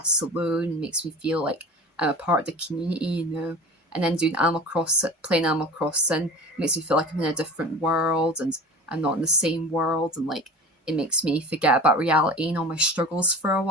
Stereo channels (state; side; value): normal; both; correlation 0.37